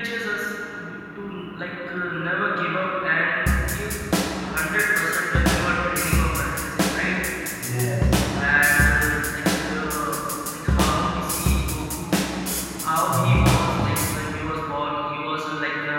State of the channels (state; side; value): identical; both; correlation 1.00